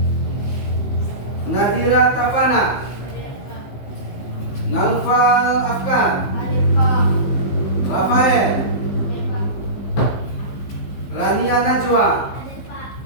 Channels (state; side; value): late; right; 15 ms